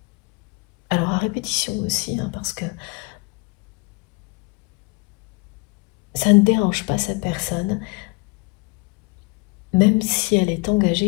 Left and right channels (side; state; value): right; quieter; 27.9 dB